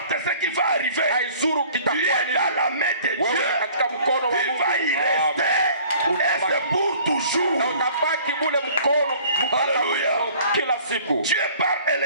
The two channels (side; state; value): both; inverted; correlation -0.51